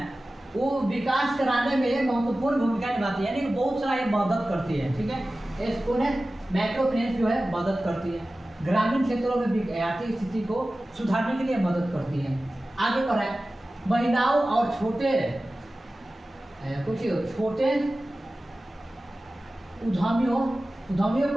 वो विकास कराने में महत्वपूर्ण भूमिका निभाती है, यानी कि बहुत सारा ये मदद करती है। ठीक है, इसको है माइक्रो फाइनेंस जो है मदद करती है, ग्रामीण क्षेत्रों में आर्थिक स्थिति को सुधारने के लिए मदद करती है। आगे बढ़ा है महिलाओं और छोटे उद्यमियों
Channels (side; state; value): both; normal; correlation 0.96